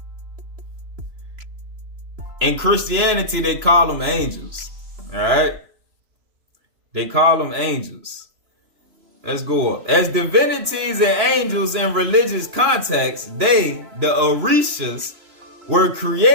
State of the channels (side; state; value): left; late; 3.0 ms